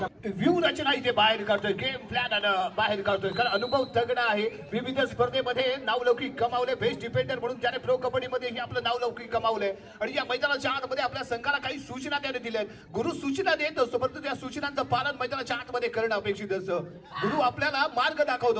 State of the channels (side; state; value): both; identical; correlation 1.00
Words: व्ह्यू रचना इथे बाहेर काढतोय. गेम प्लॅन बाहेर काढतोय कारण अनुभव तगडा आहे. विविध स्पर्धेमध्ये नावलौकिक कमावले. बेस्ट डिफेंडर म्हणून त्याने प्रो कबड्डीमध्ये आपलं नावलौकिक कमावलंय आणि या मैदानाच्या आतमध्ये आपल्या संघाला काही सूचना त्याने दिल्या. गुरु सूचना देत असतो परंतु त्या सूचनांचं पालन मैदानाच्या आतमध्ये करणं अपेक्षित असतं. गुरु आपल्याला मार्ग